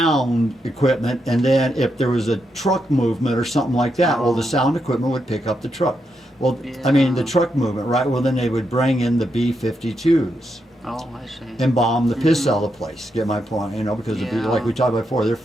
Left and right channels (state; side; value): normal; both; correlation 0.82